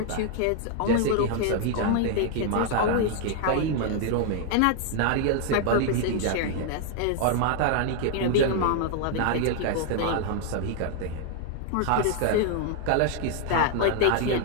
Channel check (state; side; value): different; both; correlation 0.00